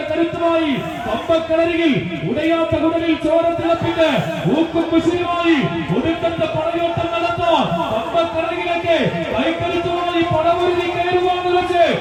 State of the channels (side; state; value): both; identical; correlation 1.00